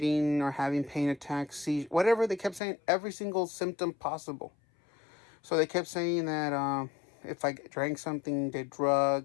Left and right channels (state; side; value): drops out; right; at 2.6 s